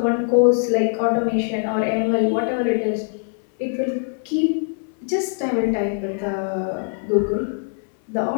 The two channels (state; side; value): silent; right; 58 dB below the other